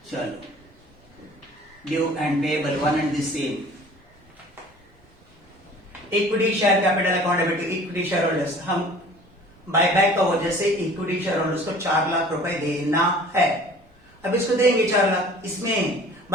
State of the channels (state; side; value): normal; both; correlation 0.48